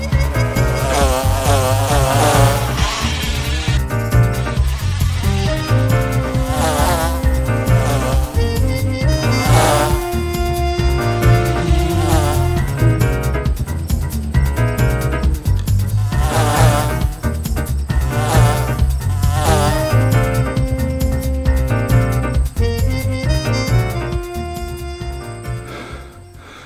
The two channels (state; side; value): identical; both; correlation 1.00